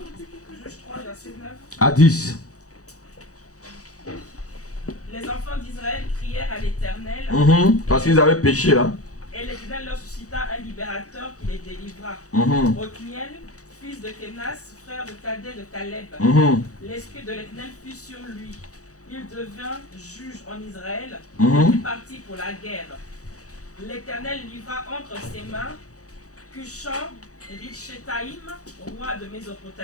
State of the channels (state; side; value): late; right; 0.66 ms